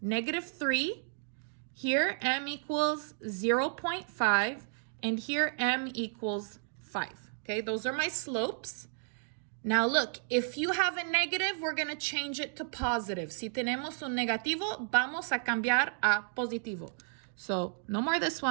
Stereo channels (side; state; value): left; silent; digital silence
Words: -3. Here, M equals 0.5. And here, M equals 5. Okay, those are my slopes. Now look, if you have a negative, we're going to change it to positive. Si tenemos un negativo, vamos a cambiar a positivo. So no more this